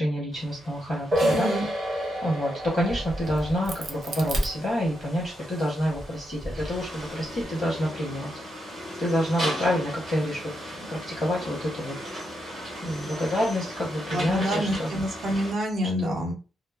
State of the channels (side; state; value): both; normal; correlation 0.82